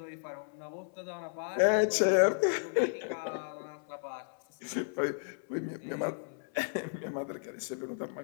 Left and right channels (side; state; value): right; silent; 55 dB below the other